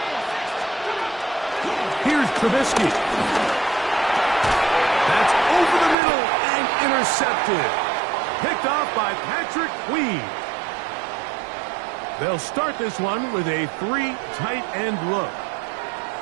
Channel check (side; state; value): left; drops out; at 6.0 s